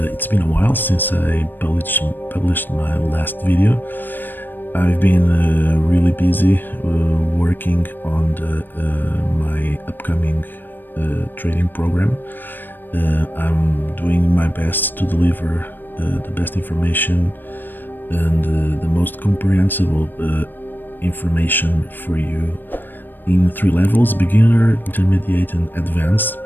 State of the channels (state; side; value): late; right; 0.093 ms